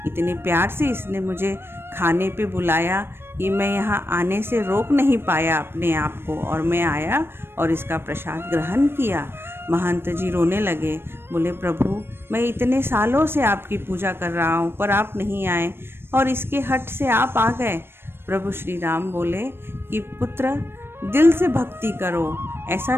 इतने प्यार से इसने मुझे खाने पे बुलाया कि मैं यहाँ आने से रोक नहीं पाया अपने आप को, और मैं आया और इसका प्रसाद ग्रहण किया। महंत जी रोने लगे। बोले, प्रभु, मैं इतने सालों से आपकी पूजा कर रहा हूँ पर आप नहीं आए और इसके हट से आप आ गए। प्रभु श्री राम बोले कि पुत्र, दिल से भक्ति करो, ऐसा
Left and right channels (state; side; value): late; left; 0.11 ms